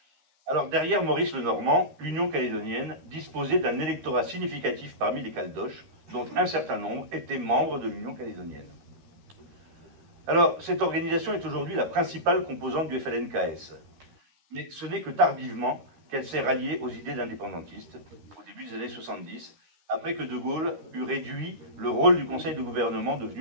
Alors derrière Maurice Lenormand, l'Union calédonienne disposait d'un électorat significatif parmi les Caldoches, dont un certain nombre étaient membres de l'Union calédonienne. Alors, cette organisation est aujourd'hui la principale composante du FLNKS. Mais ce n'est que tardivement qu'elle s'est ralliée aux idées d'indépendantistes, au début des années 70, après que De Gaulle eut réduit le rôle du Conseil de gouvernement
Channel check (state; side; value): late; left; 13 ms